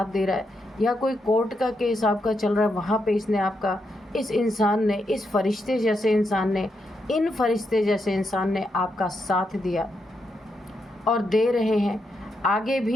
दे रहा है, या कोई कोर्ट का केस आपका चल रहा है, वहाँ पे इसने आपका, इस इंसान ने, इस फरिश्ते जैसे इंसान ने, इन फरिश्ते जैसे इंसान ने आपका साथ दिया और दे रहे हैं। आगे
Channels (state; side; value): normal; both; correlation 0.82